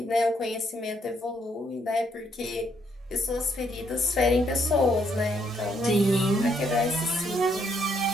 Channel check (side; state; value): both; normal; correlation 0.72